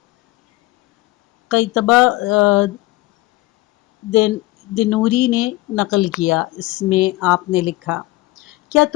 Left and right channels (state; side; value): quieter; right; 19.7 dB